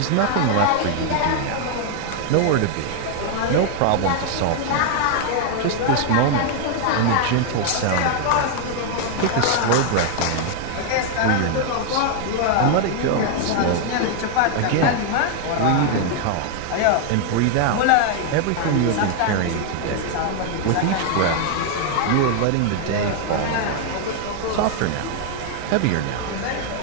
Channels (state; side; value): different; both; correlation 0.00